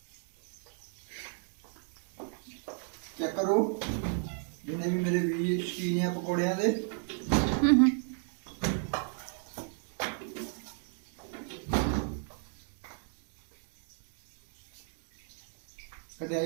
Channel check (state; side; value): silent; left; 55 dB below the other